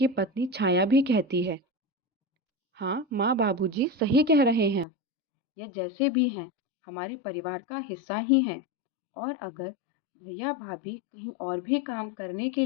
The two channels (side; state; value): right; drops out; at 4.9 s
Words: पत्नी छाया भी कहती है, हाँ माँ बाबूजी सही कह रहे हैं, ये जैसे भी हैं हमारे परिवार का हिस्सा ही हैं, और अगर भैया भाभी कहीं और भी काम करने के